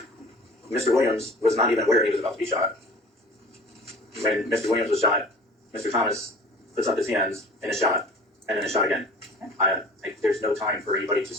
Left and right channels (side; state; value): both; normal; correlation 0.44